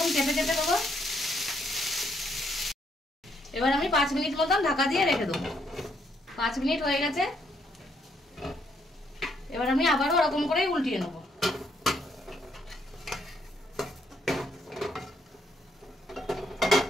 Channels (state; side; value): normal; both; correlation 0.72